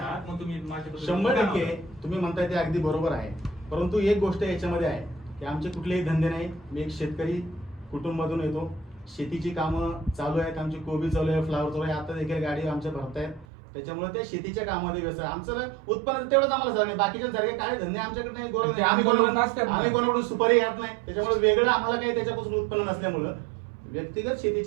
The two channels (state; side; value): drops out; left; at 13.5 s